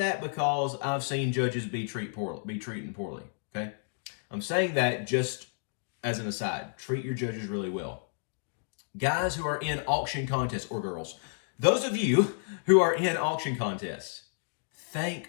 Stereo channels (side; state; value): right; silent; digital silence